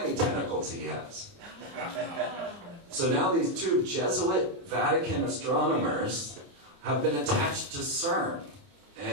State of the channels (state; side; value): late; left; 28 ms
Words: tentacles he has. So now these two Jesuit Vatican astronomers have been attached to CERN.